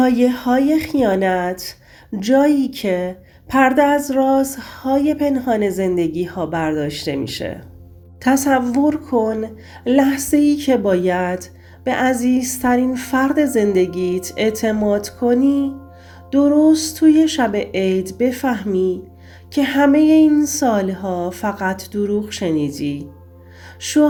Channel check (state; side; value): identical; both; correlation 1.00